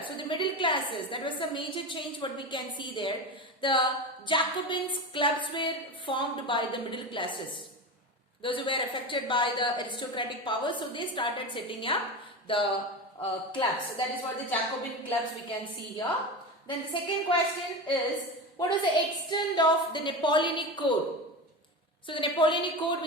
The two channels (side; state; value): both; normal; correlation 0.24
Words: So the middle classes, that was a major change what we can see there. The Jacobins clubs were formed by the middle classes. Those who were affected by the aristocratic power, so they started setting up the clubs. So that is what the Jacobin clubs we can see here. Then the second question is, what was the extent of the Napoleonic Code? So the Napoleonic Code,